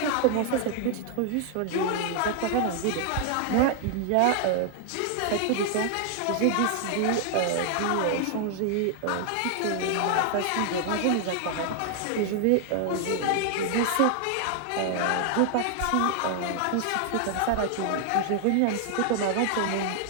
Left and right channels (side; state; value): both; different; correlation 0.00